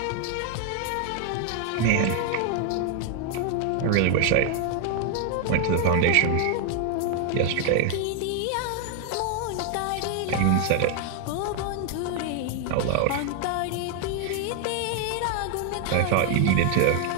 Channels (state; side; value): different; both; correlation 0.00